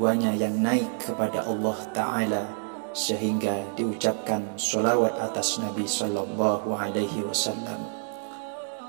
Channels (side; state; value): left; silent; 60 dB below the other